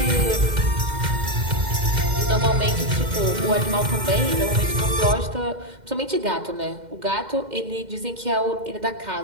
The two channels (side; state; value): left; late; 2.1 ms